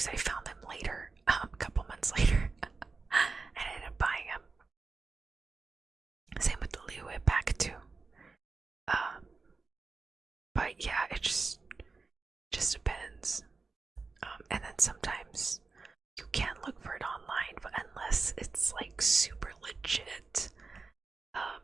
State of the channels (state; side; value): quieter; left; 4.2 dB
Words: I found them later, a couple months later. I ended up buying them. Same with the Liuit pack, too. But yeah, it just depends. And then sometimes you can look for it online, but unless it's like super legit,